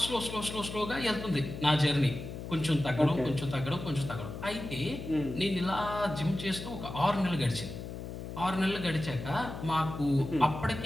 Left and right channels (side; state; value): left; noise; hum, 8 dB below the sound